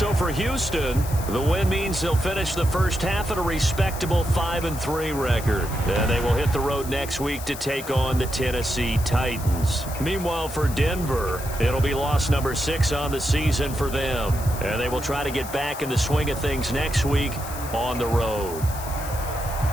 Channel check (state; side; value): noise; left; hiss, 12 dB below the sound